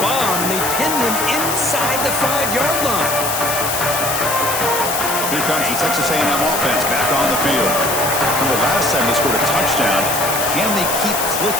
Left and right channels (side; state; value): left; noise; hiss, 3 dB below the sound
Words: bomb. And they pinned him inside the 5-yard line. Here comes the Texas A&M offense back on the field. Remember last time they scored a touchdown. Can they keep